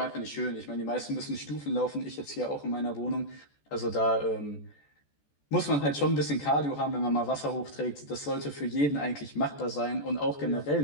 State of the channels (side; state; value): right; late; 14 ms